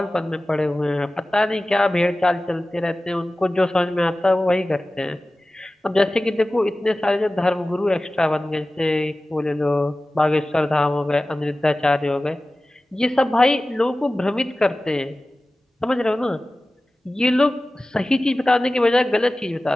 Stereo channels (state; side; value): normal; both; correlation 0.96